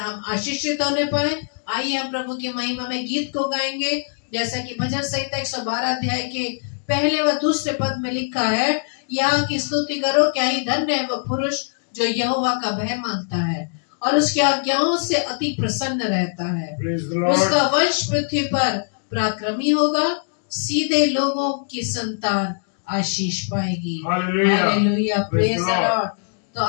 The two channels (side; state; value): right; silent; digital silence